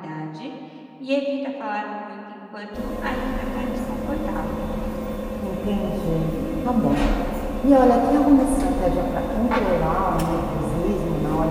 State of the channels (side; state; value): both; identical; correlation 1.00